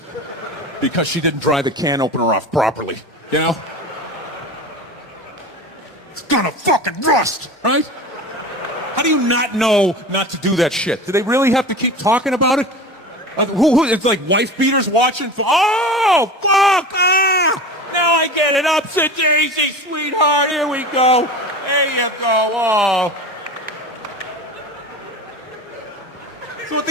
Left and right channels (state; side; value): normal; both; correlation 0.32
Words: because she didn't dry the can opener off properly, It's gonna fucking rust, right? How do you not know not to do that shit? Do they really have to keep talking about it? It's like wife beaters watching. Oh, fuck! Ah! Now I get it. Upset daisy, sweetheart. Here we go. There you go. Oh. So at